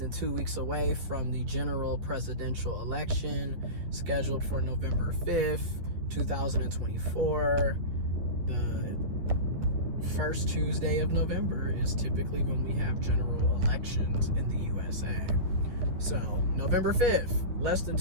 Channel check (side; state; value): left; late; 11 ms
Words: 2 weeks away from the general presidential election scheduled for November 5th, 2024. The first Tuesday of November is typically when we have general elections in the USA. So, November 5th, less than